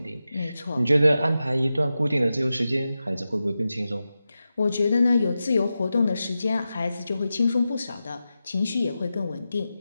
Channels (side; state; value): both; inverted; correlation -0.92